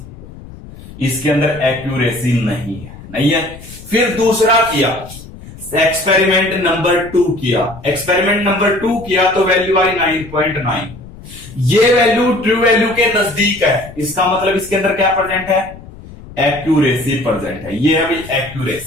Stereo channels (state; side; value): noise; left; rumble, 17 dB below the sound